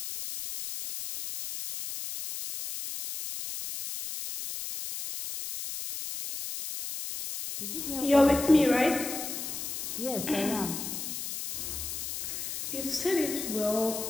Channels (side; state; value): left; noise; hiss, 6 dB below the sound